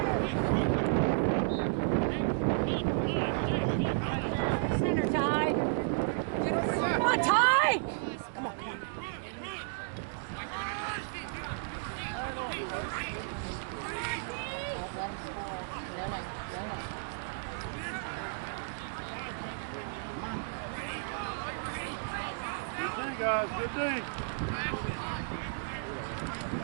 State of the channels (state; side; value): silent; left; digital silence